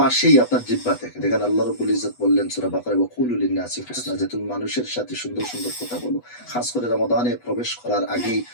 আসেই আপনার জিহ্বা থেকে। দেখেন আল্লাহ রাব্বুল ইজ্জত বললেন সূরা বাকারায়, ওয়াকুলু লিন-নাসি হুসনা, যে তুমি মানুষের সাথে সুন্দর সুন্দর কথা বলো। খাস করে রমাদানে প্রবেশ করার আগেই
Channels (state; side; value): late; right; 8.1 ms